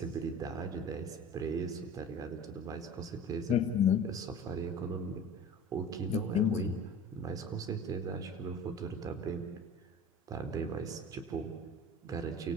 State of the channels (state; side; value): normal; both; correlation 0.39